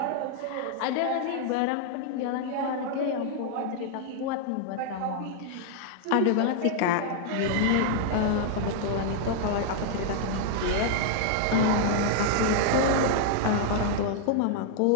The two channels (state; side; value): different; both; correlation -0.01